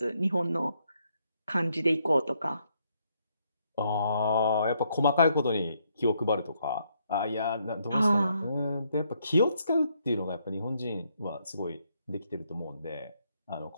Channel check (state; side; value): inverted; both; correlation -0.74